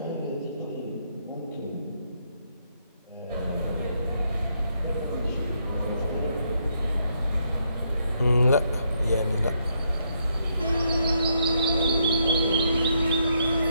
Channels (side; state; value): both; inverted; correlation -0.76